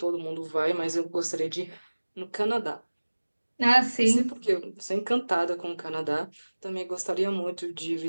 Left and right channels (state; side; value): inverted; both; correlation -1.00